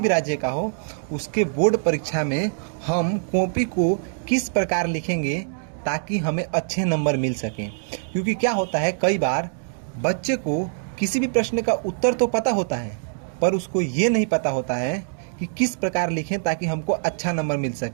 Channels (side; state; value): left; silent; digital silence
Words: राज्य का हो, उसके बोर्ड परीक्षा में हम कॉपी को किस प्रकार लिखेंगे ताकि हमें अच्छे नंबर मिल सकें। क्योंकि क्या होता है, कई बार बच्चे को किसी भी प्रश्न का उत्तर तो पता होता है पर उसको ये नहीं पता होता है कि किस प्रकार लिखें ताकि हमको अच्छा नंबर मिल